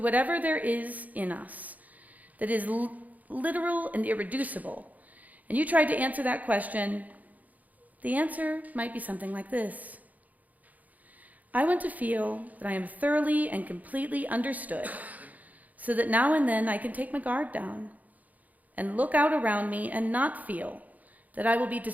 there is in us that is literal and irreducible, and you tried to answer that question, the answer might be something like this. I want to feel that I am thoroughly and completely understood, so that now and then I can take my guard down and look out around me and not feel that I will be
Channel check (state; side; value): late; left; 0.078 ms